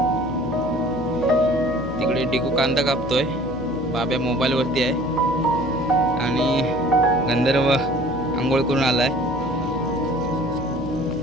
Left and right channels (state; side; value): noise; left; hum, 11 dB below the sound